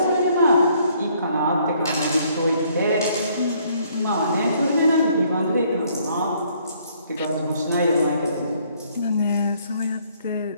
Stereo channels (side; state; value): both; inverted; correlation -0.65